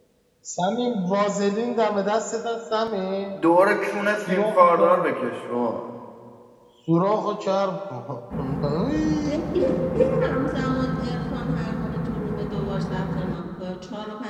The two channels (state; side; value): identical; both; correlation 1.00